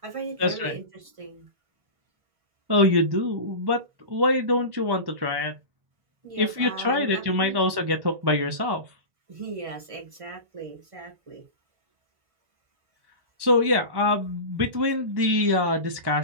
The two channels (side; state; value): left; late; 1.1 ms